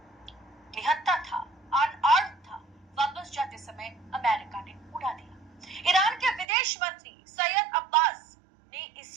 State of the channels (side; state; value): left; drops out; at 6.5 s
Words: निहत्था था, अनआर्म्ड था, वापस जाते समय अमेरिका ने उड़ा दिया। ईरान के विदेश मंत्री सैयद अब्बास ने